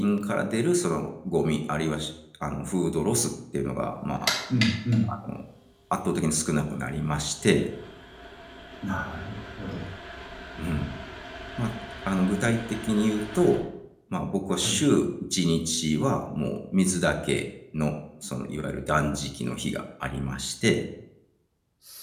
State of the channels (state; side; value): identical; both; correlation 1.00